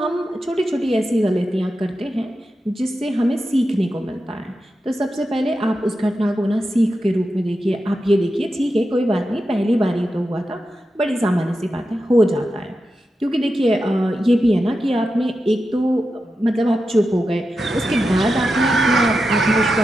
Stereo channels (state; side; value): normal; both; correlation 0.90